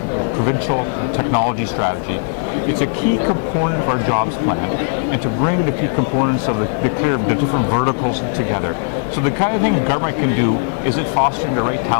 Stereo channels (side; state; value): right; silent; 67 dB below the other